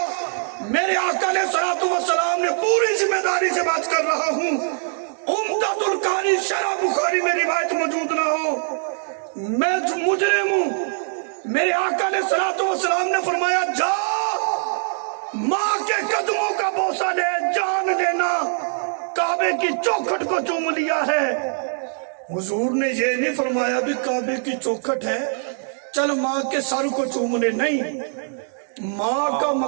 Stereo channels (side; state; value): left; silent; 64 dB below the other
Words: میرے آقا علیہ الصلوۃ والسلام نے پوری ذمہ داری سے بات کر رہا ہوں، عمدۃ القاری شرح بخاری میں روایت موجود نہ ہو، میں مجرم ہوں۔ میرے آقا علیہ الصلوۃ والسلام نے فرمایا جا ماں کے قدموں کا بوسہ لے، جان لینا کعبے کی چوکھٹ کو چوم لیا ہے۔ حضور نے یہ نہیں فرمایا بھی کعبے کی چوکھٹ ہے چل ماں کے سر کو چوم لے، نہیں، ماں کا